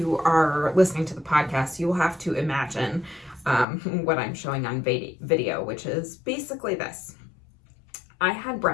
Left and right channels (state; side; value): drops out; right; at 3.7 s